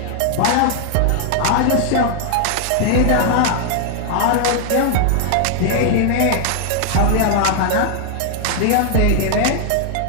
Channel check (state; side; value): different; both; correlation 0.00